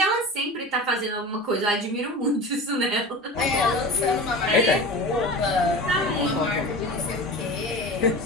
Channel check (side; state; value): both; normal; correlation 0.33